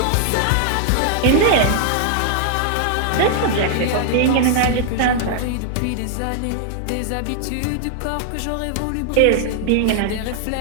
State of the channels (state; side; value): different; both; correlation 0.00